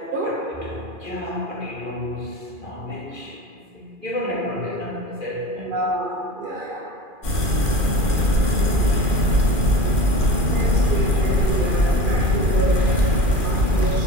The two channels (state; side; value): late; left; 2.4 ms